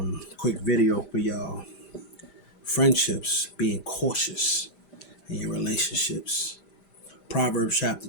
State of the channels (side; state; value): right; late; 5.0 ms